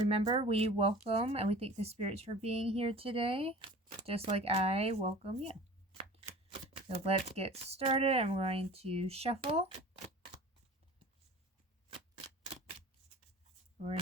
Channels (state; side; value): normal; both; correlation 0.41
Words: we welcome and we thank the spirits for being here today. Just like I welcome you. So let's get started. I'm going to shuffle. We're